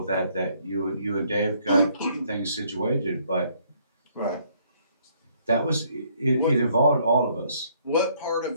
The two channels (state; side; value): inverted; both; correlation -0.66